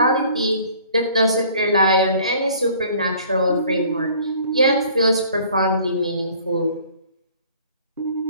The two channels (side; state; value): both; inverted; correlation -0.53